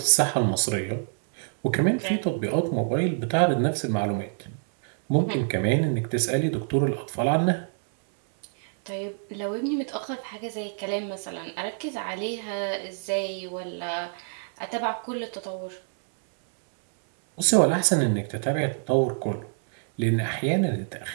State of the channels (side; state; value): left; silent; 61 dB below the other